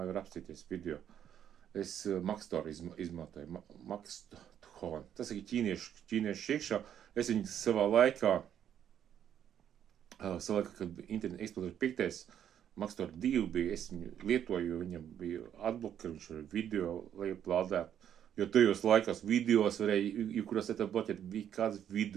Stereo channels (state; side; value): quieter; left; 9.6 dB